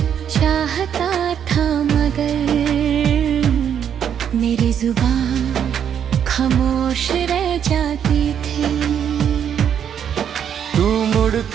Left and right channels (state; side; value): quieter; left; 8.7 dB